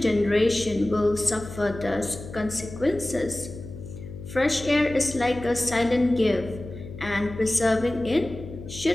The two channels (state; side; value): noise; left; hum, 12 dB below the sound